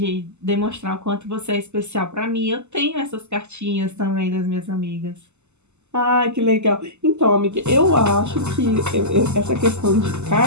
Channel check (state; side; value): late; left; 0.82 ms